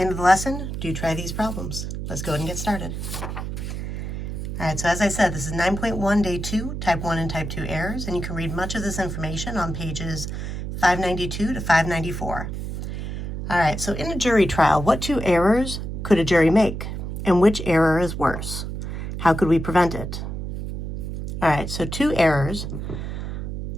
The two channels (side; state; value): right; noise; hum, 5 dB below the sound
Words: end of the lesson, do try these problems. Let's go ahead and get started. All right, so as I said, this is 9.1, day 2, type 1 and type 2 errors, and you can read much of this information on pages 592 to 594. All right, so in a jury trial, what 2 errors could a jury make? And which error is worse? How could we prevent it? All right, so 2 errors.